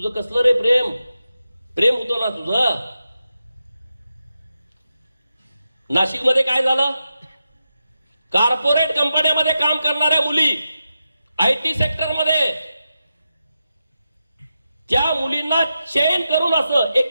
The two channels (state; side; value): inverted; both; correlation -0.89